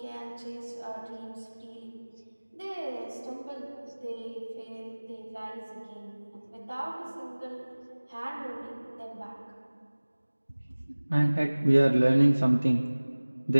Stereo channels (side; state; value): both; inverted; correlation -1.00